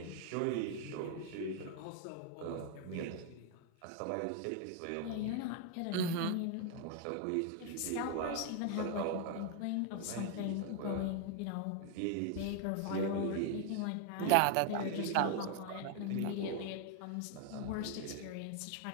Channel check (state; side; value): different; both; correlation 0.00